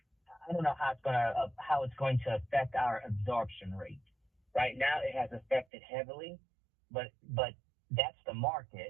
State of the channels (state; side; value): drops out; left; at 5.7 s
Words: I don't know how it's going to affect our absorption rate. Right now, it has affected heavily, but that's the